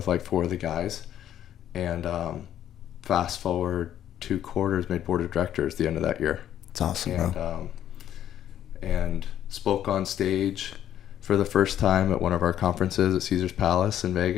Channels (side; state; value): right; quieter; 11.0 dB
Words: like 4 of the guys. And fast forward 2 quarters, made board of directors the end of that year. It's awesome. And, and spoke on stage for the first time at one of our conferences at Caesar's Palace in